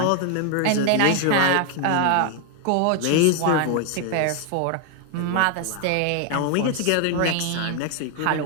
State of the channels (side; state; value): both; different; correlation 0.01